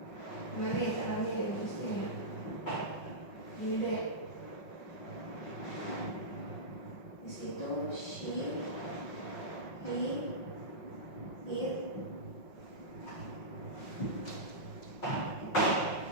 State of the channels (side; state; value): right; late; 5.4 ms